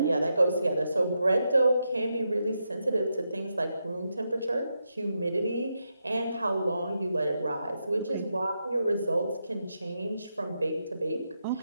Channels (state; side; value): inverted; both; correlation -0.85